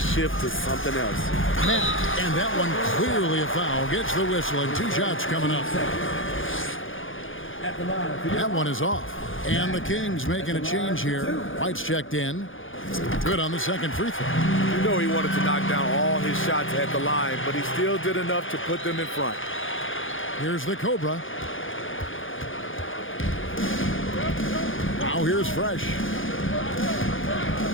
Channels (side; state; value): right; late; 0.58 ms